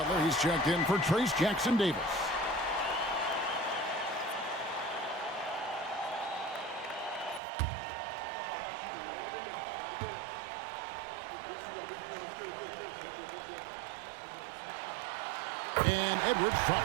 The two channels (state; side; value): drops out; left; at 7.4 s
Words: he's checked in for Trace Jackson-Davis. And Edwards